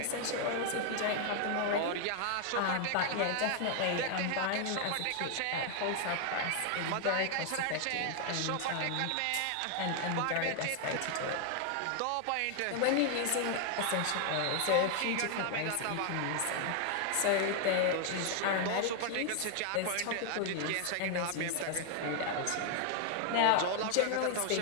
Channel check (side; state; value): both; different; correlation 0.00